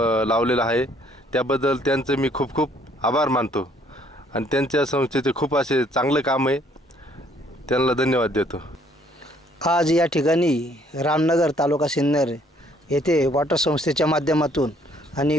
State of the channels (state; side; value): normal; both; correlation 0.63